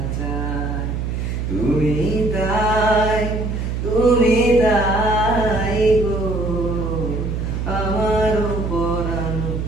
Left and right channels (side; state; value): right; noise; hum, 2 dB below the sound